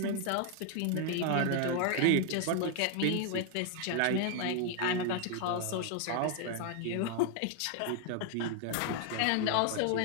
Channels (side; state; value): both; different; correlation 0.00